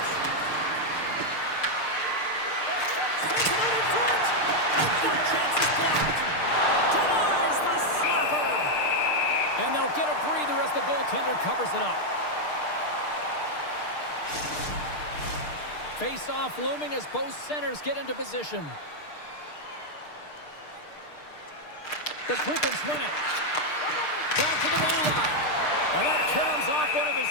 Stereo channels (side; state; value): right; late; 6.6 ms